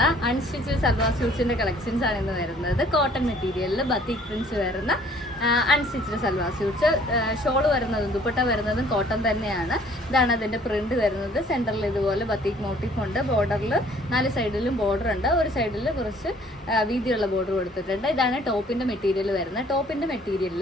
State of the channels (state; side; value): normal; both; correlation 0.57